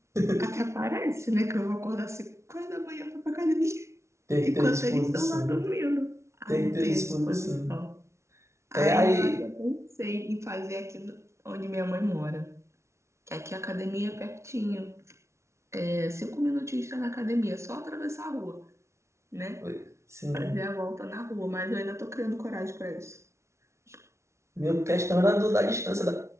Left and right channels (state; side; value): late; left; 0.13 ms